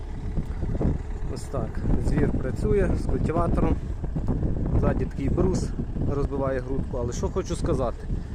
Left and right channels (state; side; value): identical; both; correlation 1.00